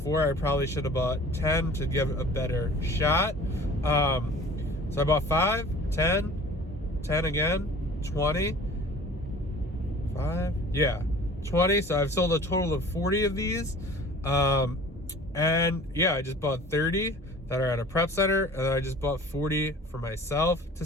I probably should have bought 10 to give a better shot. So I bought 5, 10, 10 again, 20, 5, yeah, 20. So I've sold a total of 40 of these. And yeah, I just bought 30 that are at a prep center, and then I just bought 40 for myself to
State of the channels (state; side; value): normal; both; correlation 0.45